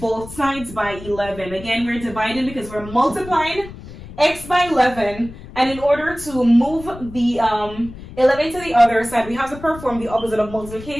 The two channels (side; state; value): left; noise; rumble, 15 dB below the sound